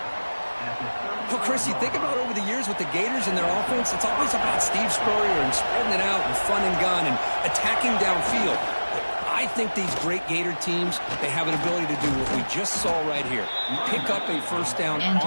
Well, Chris, you think about over the years with the Gators and their offense, it's always about Steve Spurrier and spreading it out and fun and gun and attacking downfield. But I I think these great Gator teams, they have an ability to do what we just saw right here. Pick up a first down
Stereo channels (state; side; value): inverted; both; correlation -1.00